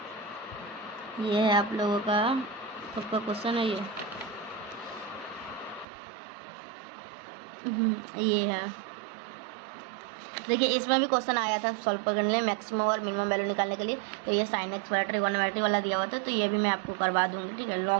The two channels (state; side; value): drops out; left; at 5.9 s